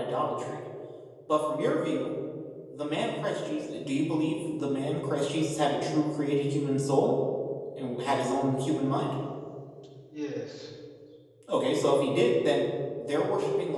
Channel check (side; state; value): both; identical; correlation 1.00